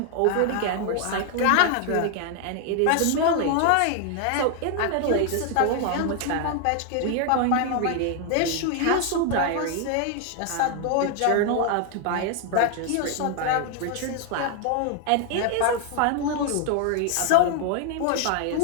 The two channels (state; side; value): different; both; correlation 0.00